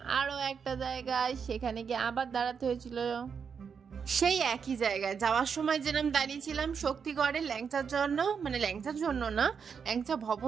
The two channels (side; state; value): left; quieter; 6.4 dB